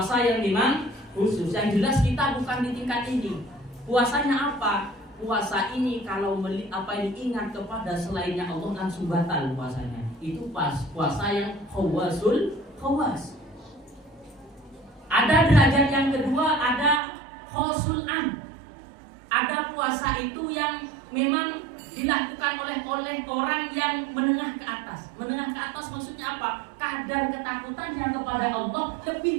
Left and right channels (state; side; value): drops out; left; at 17.0 s